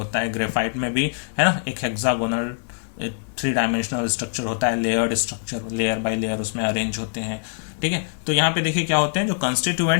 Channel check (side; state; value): right; silent; digital silence